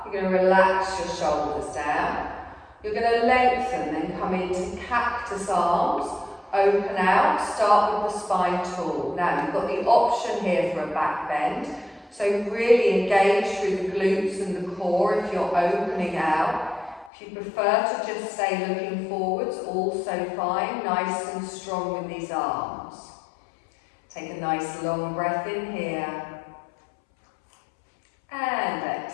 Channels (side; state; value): right; drops out; at 17.1 s